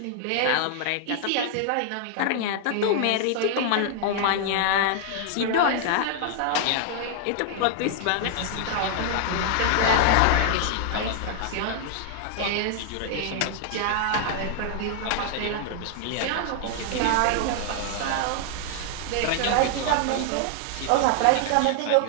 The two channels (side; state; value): both; different; correlation 0.00